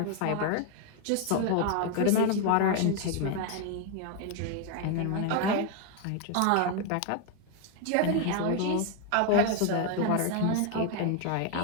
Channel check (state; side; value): different; both; correlation 0.01